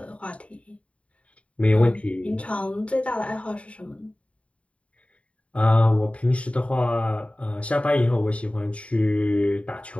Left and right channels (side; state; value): right; late; 0.063 ms